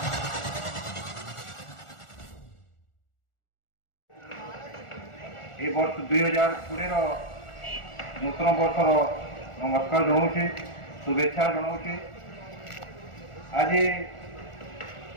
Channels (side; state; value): right; late; 1.4 ms